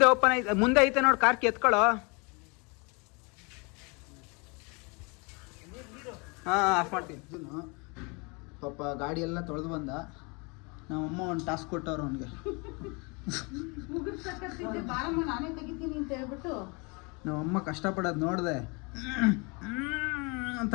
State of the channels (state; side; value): quieter; right; 30.4 dB